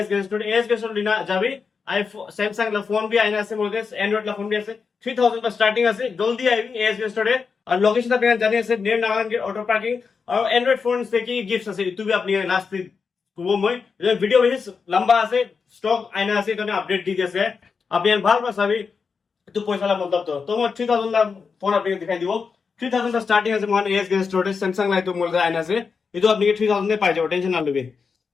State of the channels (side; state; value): right; quieter; 5.4 dB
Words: गेस्टोड लिना जाबी आईफोन सैमसंग ला फोन भी आइना আছে মোদের অ্যান্ড্রয়েড লা ফোন भी আছে 3000 का स्टार्टिंग আছে জলদি আইবি এস गेस्टोडে। আর লোকেশন আপনি জানি আছে নিয়ার নাগান গেট অটো পার্কিং। আর অ্যান্ড্রয়েড ফোন থেকে গিফটস আছে ইতু भी আপনি লাস্ট করব মই ভিডিও বেশি লম্বা আছে স্টক আইনা আছে এখানে আপডেট দি দিয়েছে আপনি ভাল পাসাবি একটু পয়সা লা মতলব তো তোমার 3000 লা ফোন আপনি দেখাই দিব। 3000 का स्टार्टिंग আছে মান এস गेस्टोडে স্যামসাং লাই তো মোদের আইনা আছে ইতু আপনি 3000 এ পাই যাবেন টেনশন না লবে।